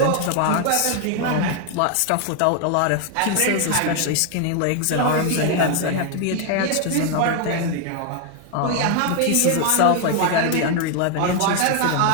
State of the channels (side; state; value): both; different; correlation 0.01